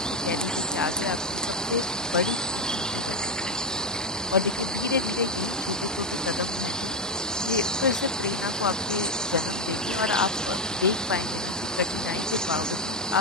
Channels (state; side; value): normal; both; correlation 0.09